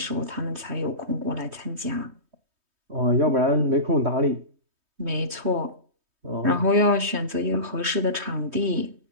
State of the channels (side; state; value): left; late; 3.2 ms